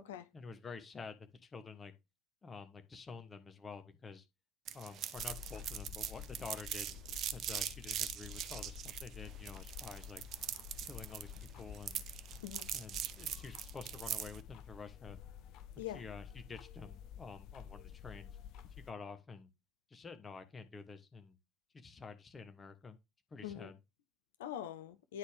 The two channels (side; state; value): both; normal; correlation 0.46